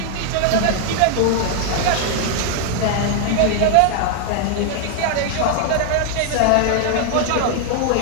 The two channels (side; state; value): both; different; correlation 0.00